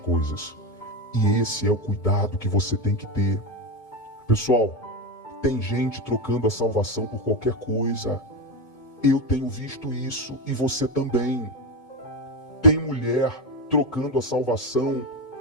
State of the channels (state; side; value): late; right; 2.2 ms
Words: E esse é o cuidado que você tem que ter. Pessoal, tem gente trocando a salvação por qualquer coisa. Eu tenho visto isso e você também. Tem mulher trocando a salvação